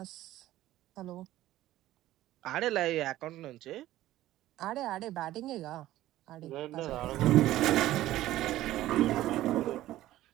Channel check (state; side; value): quieter; left; 14.8 dB